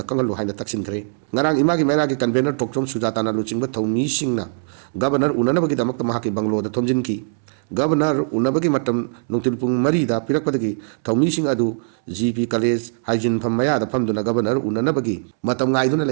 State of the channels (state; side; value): silent; left; 65 dB below the other